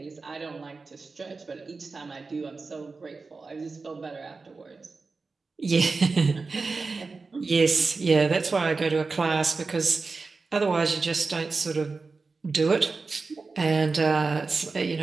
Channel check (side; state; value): left; quieter; 4.1 dB